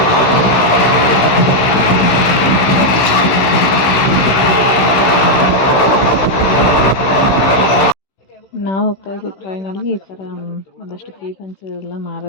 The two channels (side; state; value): right; late; 16 ms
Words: ನಾವು ಹೋಗ್ತಾ ಇದ್ವಿ ಟ್ರೈನಲ್ಲಿ. ಈ ಥರ ಒಂದಷ್ಟು ಕೀ ಪಂಚ್ ಎಲ್ಲ